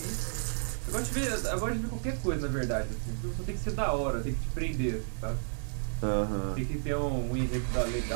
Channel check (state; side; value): silent; left; digital silence